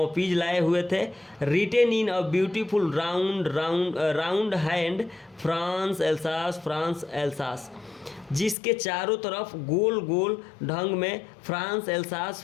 लाए हुए थे। Written in a beautiful round hand, France Alsace, France Alsace, जिसके चारों तरफ गोल गोल ढंग में फ्रांस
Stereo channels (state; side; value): drops out; right; at 8.6 s